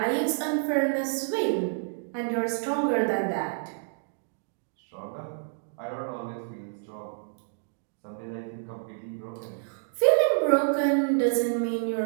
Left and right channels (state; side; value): silent; left; digital silence